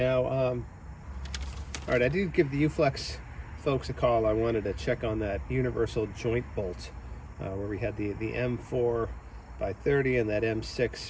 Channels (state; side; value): identical; both; correlation 1.00